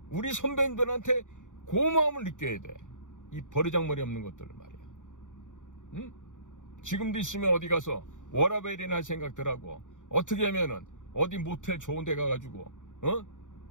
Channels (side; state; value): right; late; 0.86 ms